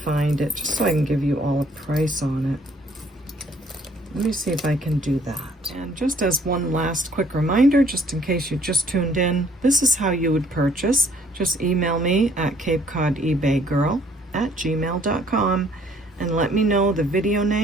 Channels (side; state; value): both; normal; correlation 0.61